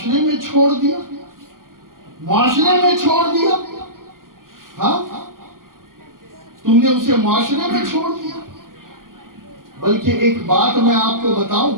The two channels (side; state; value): left; late; 0.91 ms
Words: میں چھوڑ دیا. معاشرے میں چھوڑ دیا. ہاں، تم نے اسے معاشرے میں چھوڑ دیا. بلکہ ایک بات میں آپ کو بتاؤں،